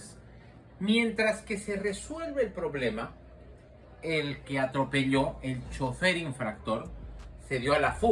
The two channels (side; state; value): both; identical; correlation 1.00